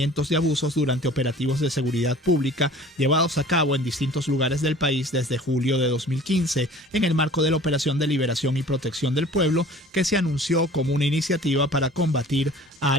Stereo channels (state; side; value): normal; both; correlation 0.46